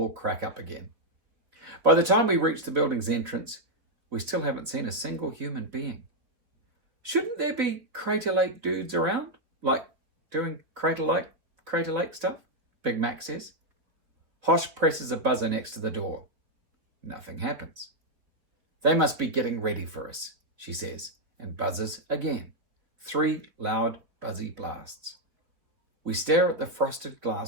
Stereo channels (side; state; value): left; late; 4.3 ms